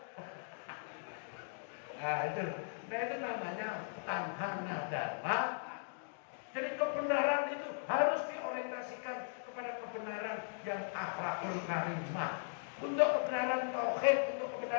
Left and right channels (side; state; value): right; silent; digital silence